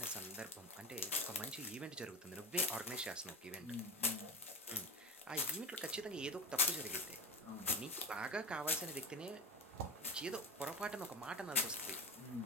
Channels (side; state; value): both; normal; correlation 0.25